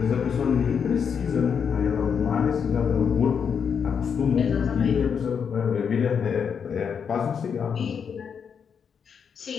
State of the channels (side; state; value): right; quieter; 6.9 dB